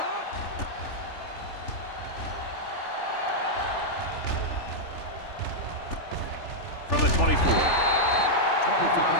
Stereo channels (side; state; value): right; late; 3.4 ms